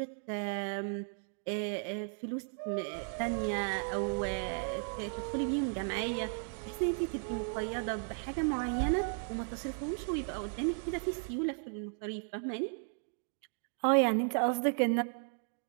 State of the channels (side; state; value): left; silent; 54 dB below the other